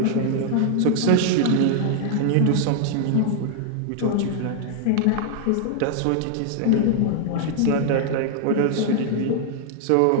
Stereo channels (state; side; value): different; both; correlation 0.00